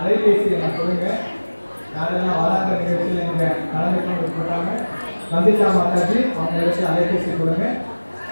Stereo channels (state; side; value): inverted; both; correlation -1.00